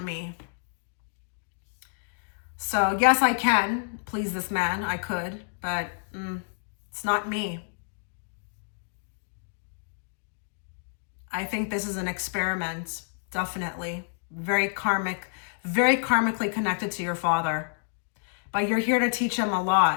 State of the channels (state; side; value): silent; right; 59 dB below the other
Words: me. So yes, I can please this man. I could, but it's not me. I think this is an experiment, definitely. Very karmically connected to your father. But you're here to teach him a